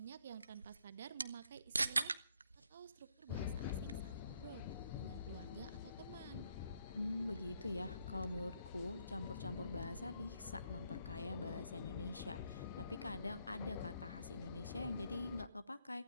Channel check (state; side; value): inverted; both; correlation -0.73